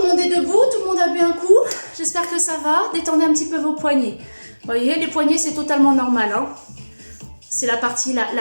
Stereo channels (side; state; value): both; inverted; correlation -1.00